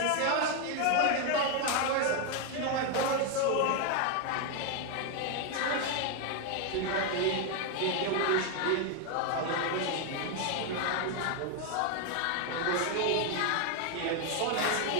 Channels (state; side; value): different; both; correlation 0.01